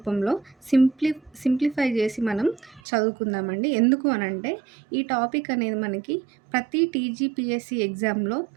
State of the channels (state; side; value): drops out; left; at 2.8 s